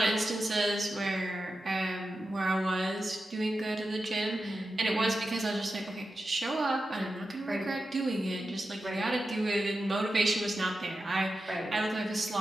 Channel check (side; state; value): both; normal; correlation 0.91